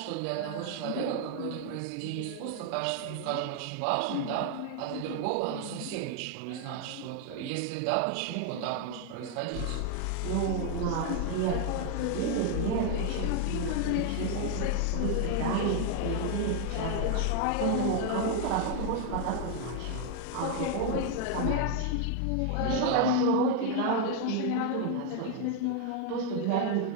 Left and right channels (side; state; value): both; different; correlation 0.00